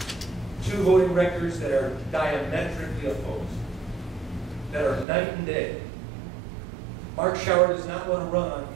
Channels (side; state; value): left; drops out; at 5.1 s